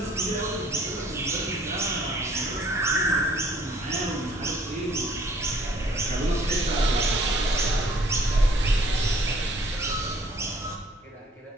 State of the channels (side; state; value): both; normal; correlation 0.58